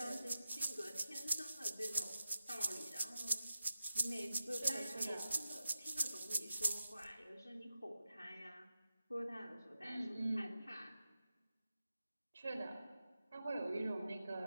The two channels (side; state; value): both; inverted; correlation -0.89